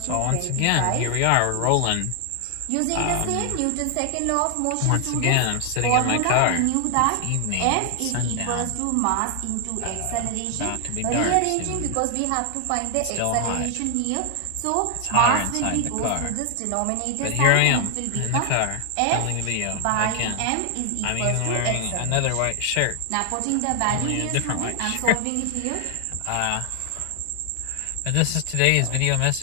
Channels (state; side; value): different; both; correlation 0.00